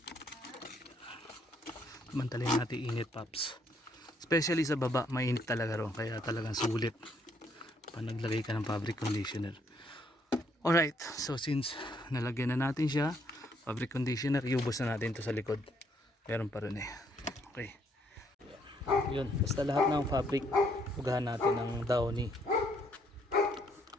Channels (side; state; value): both; normal; correlation 0.70